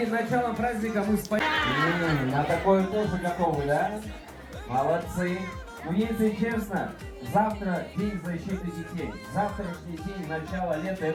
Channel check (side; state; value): both; identical; correlation 1.00